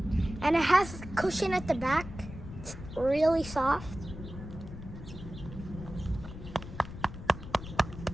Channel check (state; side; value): noise; left; rumble, 11 dB below the sound